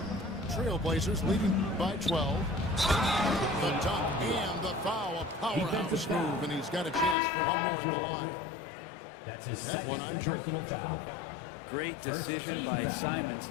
Trailblazers leading by 12. The dunk and the foul. A powerhouse move, and he's got a chance for one more at the line. That's his that one on Jordan. Great decision by Simons.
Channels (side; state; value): right; drops out; at 7.2 s